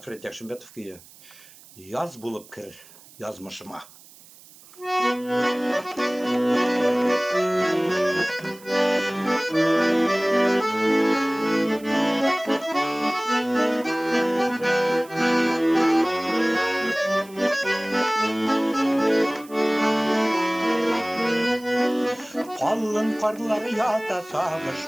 Яшымбетовке яз болып кір язмышыма. Қалың қарлар ята сағыш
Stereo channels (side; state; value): right; noise; hiss, 23 dB below the sound